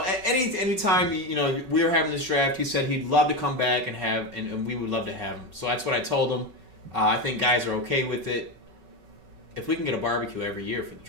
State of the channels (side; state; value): left; late; 5.3 ms